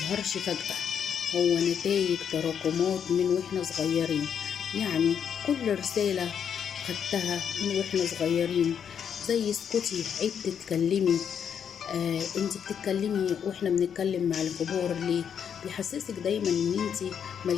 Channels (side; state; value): right; quieter; 7.9 dB